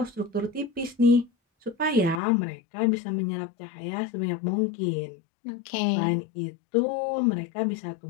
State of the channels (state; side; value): drops out; right; at 2.2 s